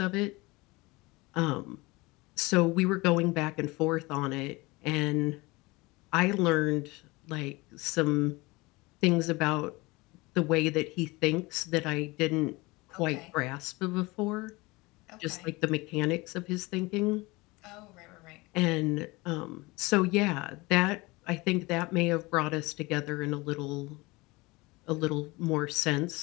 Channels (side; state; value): right; quieter; 23.2 dB